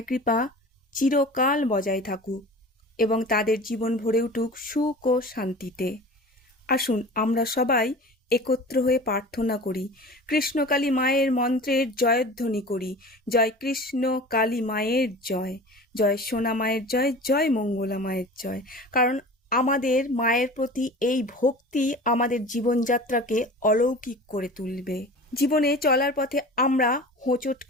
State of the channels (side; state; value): both; normal; correlation 0.38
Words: কৃপা চিরকাল বজায় থাকুক এবং তাদের জীবন ভরে উঠুক সুখ ও শান্তিতে। আসুন আমরা সবাই একত্র হয়ে প্রার্থনা করি, কৃষ্ণকালী মায়ের মন্ত্রের জয়ধ্বনি করি। জয় কৃষ্ণ কালী মায়ের জয়, জয় সোনা মায়ের জয়, জয় মঙ্গলা মায়ের জয়। কারণ আমাদের মায়ের প্রতি এই ভক্তি আমাদের জীবনযাত্রাকে অলৌকিক করে তুলবে। জীবনে চলার পথে আমরা হোঁচট